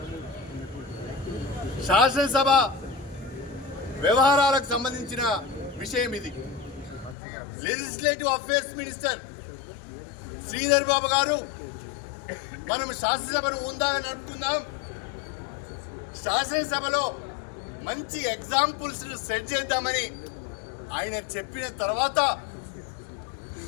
శాసనసభ వ్యవహారాలకు సంబంధించిన విషయం ఇది. Legislative affairs minister Sridhar Babu గారు మనం శాసనసభను ఉందాగా నడుపుకుందాం, శాసనసభలో మంచి ఎగ్జాంపుల్స్ సెట్ చేద్దామని ఆయన చెప్పిన తర్వాత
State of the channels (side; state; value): right; drops out; at 7.2 s